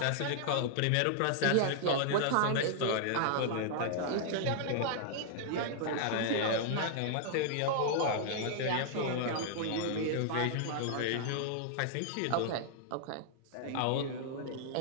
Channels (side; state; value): both; different; correlation -0.01